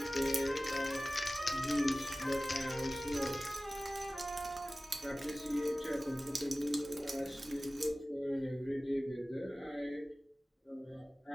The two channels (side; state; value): both; normal; correlation 0.97